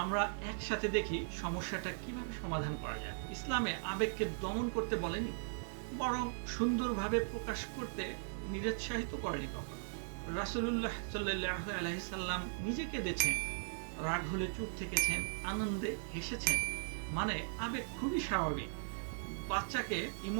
আমরা একসাথে দেখি সমস্যাটা কিভাবে সমাধান করা যায়। ইসলামে আবেগকে দমন করতে বলেনি, বরং সুন্দরভাবে প্রকাশ করতে নিরুৎসাহিত করেনি কখনো। রাসূলুল্লাহ সাল্লাল্লাহু আলাইহি সাল্লাম নিজে কেঁদেছেন, রাগ হলে চুপ থেকেছেন, আনন্দে হেসেছেন। মানে আবেগ খুবই স্বাভাবিক। বাচ্চাকে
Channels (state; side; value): silent; left; digital silence